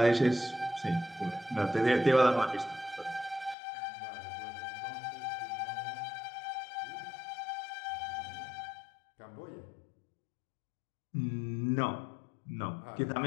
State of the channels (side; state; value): right; drops out; at 3.6 s